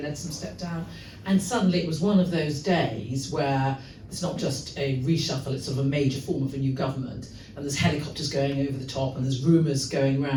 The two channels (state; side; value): identical; both; correlation 1.00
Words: Leadsom stepped down, and suddenly it was one of those days where it's not just a reshuffle, it's sort of a major form of a new government, and there's helicopters going over the top and there's rumours going